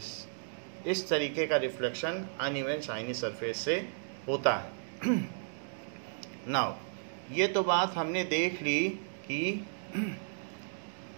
इस तरीके का रिफ्लेक्शन अनइवन शाइनी सरफेस से होता है। नाउ ये तो बात हमने देख ली कि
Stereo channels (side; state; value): left; silent; digital silence